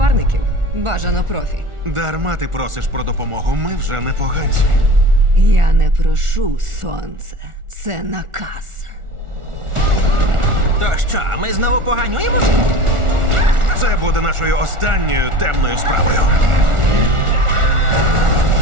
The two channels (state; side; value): late; left; 1.4 ms